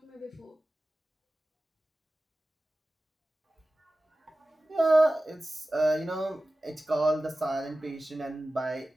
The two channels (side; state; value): both; normal; correlation 0.96